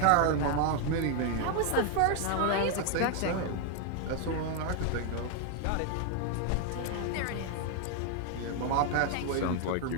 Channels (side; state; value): both; different; correlation 0.00